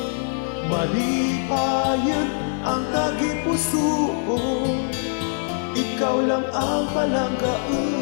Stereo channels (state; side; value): silent; right; digital silence